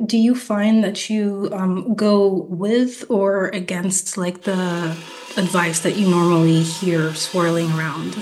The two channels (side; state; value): both; identical; correlation 1.00